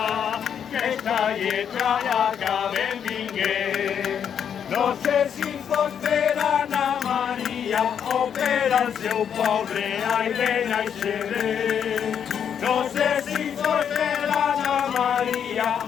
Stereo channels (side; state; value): right; quieter; 8.2 dB